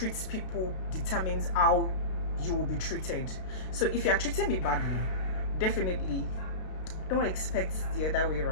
people determines how you will be treated. So if you are treating me badly, definitely don't expect the other way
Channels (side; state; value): right; late; 32 ms